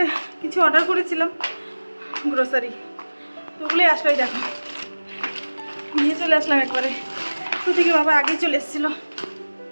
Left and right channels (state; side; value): inverted; both; correlation -1.00